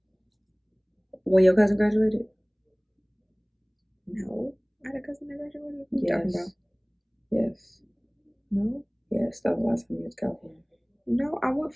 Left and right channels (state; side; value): identical; both; correlation 1.00